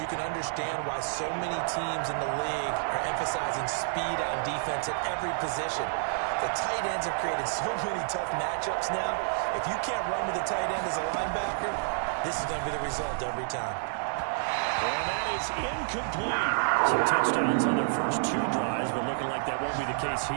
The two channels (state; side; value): silent; left; digital silence